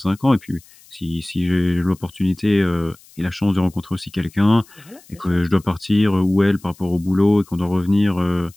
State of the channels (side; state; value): left; noise; hiss, 26 dB below the sound